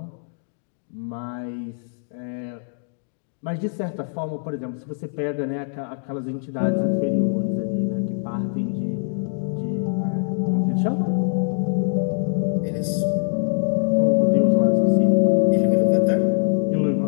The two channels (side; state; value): right; silent; digital silence